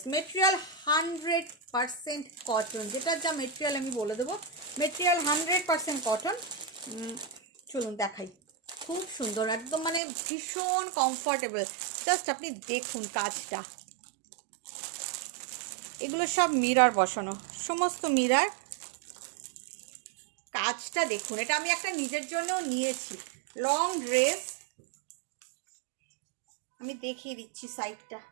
মেটেরিয়াল 100% কটন, যেটার যা মেটেরিয়াল আমি বলে দেবো, মেটেরিয়াল 100% কটন। চলুন দেখাই, খুব সুন্দর একদম, মানে ভীষণ কমফর্টেবল। জাস্ট আপনি দেখুন কাজটা, এগুলো সব মিরর বসানো, সমস্ত মিরর। কাজটা দেখুন, এটা আমি একটা নিজের জন্যও নিয়েছি। লং ড্রেস আমি দেখিয়ে দিচ্ছি সাইডটা।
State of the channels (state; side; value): drops out; left; at 10.0 s